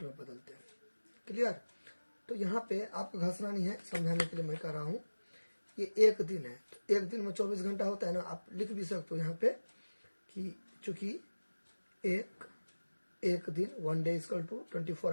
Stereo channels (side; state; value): both; inverted; correlation -1.00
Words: में बदलते हैं, क्लियर। तो यहाँ पे आपको घसना नहीं है, समझाने के लिए मैं कह रहा हूँ। ये एक दिन है तो एक दिन में 24 घंटा होता है ना, आप लिख भी सकते हो यहाँ पे कि चूंकि एक दिन 1 डे इक्वल टू 24